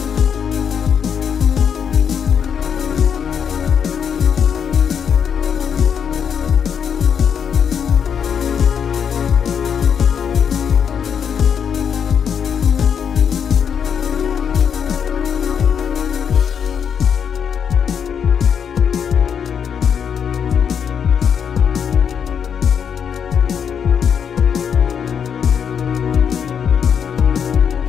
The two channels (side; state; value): right; quieter; 7.6 dB